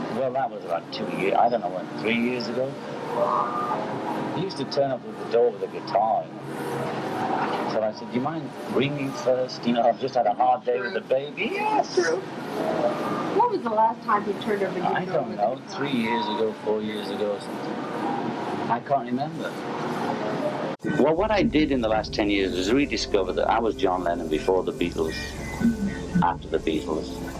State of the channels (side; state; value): both; identical; correlation 1.00